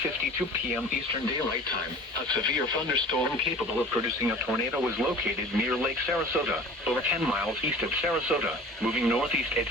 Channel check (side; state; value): both; normal; correlation 0.42